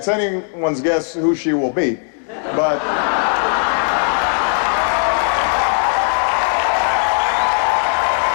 anyone's guess who she will be. But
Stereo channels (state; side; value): silent; right; 55 dB below the other